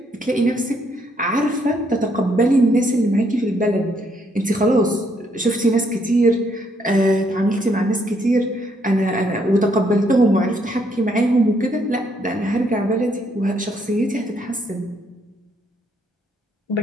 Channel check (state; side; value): normal; both; correlation 0.71